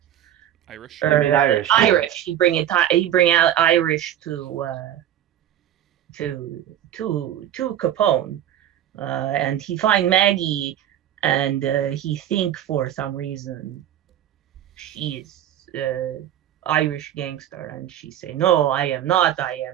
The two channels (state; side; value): quieter; left; 11.2 dB